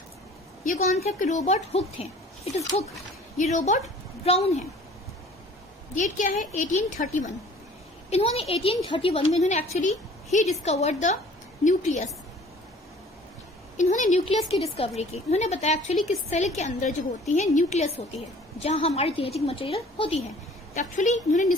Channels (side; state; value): both; normal; correlation 0.50